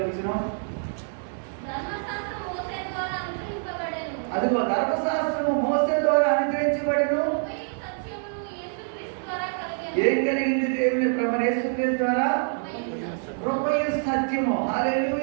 వచనం. అదిగో ధర్మశాస్త్రము మోసే ద్వారా అనుగ్రహించబడెను. ఏం కలిగింది? దేవుని ప్రభువైన యేసుక్రీస్తు ద్వారా కృపయు సత్యము.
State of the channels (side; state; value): left; silent; digital silence